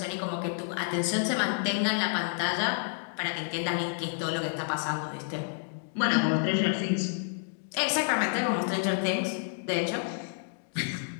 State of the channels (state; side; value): silent; right; digital silence